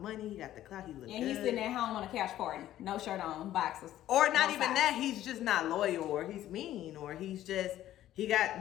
money. He got the clout. He look good. And he's sitting at home on a couch party. No shirt on, boxers. Or not even that. He's just not loyal, or he's mean, or he's just, he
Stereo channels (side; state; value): right; quieter; 13.1 dB